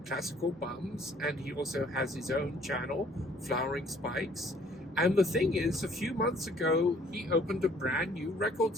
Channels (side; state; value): both; normal; correlation 0.59